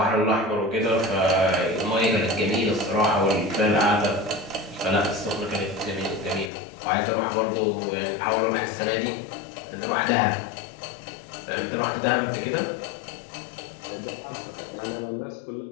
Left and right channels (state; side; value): drops out; right; at 6.5 s